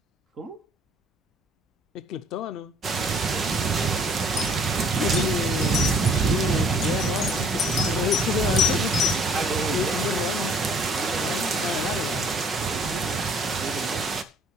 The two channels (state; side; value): normal; both; correlation 0.57